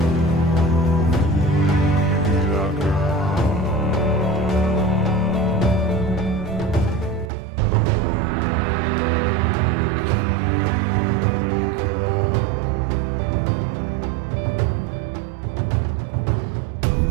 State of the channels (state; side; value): drops out; left; at 7.3 s